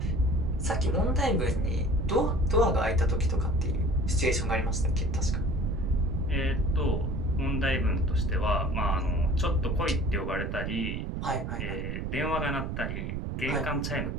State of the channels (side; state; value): right; noise; rumble, 3 dB below the sound